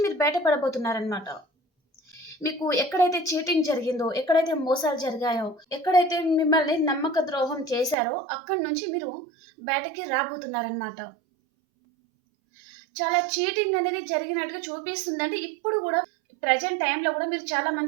మీరు బయటపడబోతున్నారనమాట. మీకు ఎక్కడైతే చీటింగ్ జరిగిందో, ఎక్కడైతే మోసాలు జరిగాయో, ఎక్కడైతే మిమ్మల్ని నమ్మక ద్రోహం చేశారో అక్కడి నుంచి మీరు బయటకి రాబోతున్నారనమాట. చాలా చీటింగ్ అనేది జరిగినట్టుగా చూపిస్తుందండి. ఇప్పుడు కూడా ప్రజెంట్ టైంలో కూడా మీరు చాలా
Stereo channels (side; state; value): left; drops out; at 8.0 s